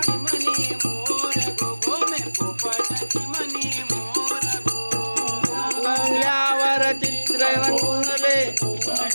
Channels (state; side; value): inverted; both; correlation -1.00